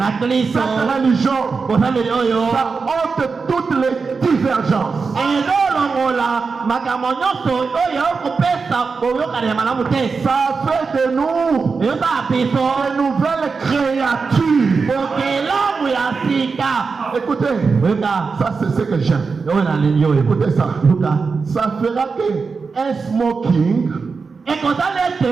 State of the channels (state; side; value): quieter; left; 4.8 dB